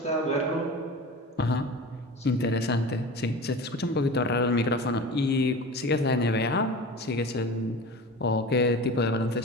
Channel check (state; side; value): normal; both; correlation 0.33